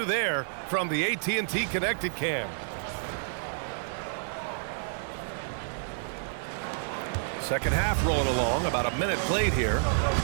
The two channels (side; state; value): left; silent; digital silence